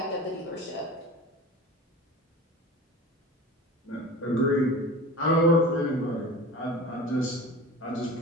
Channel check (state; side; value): normal; both; correlation 0.35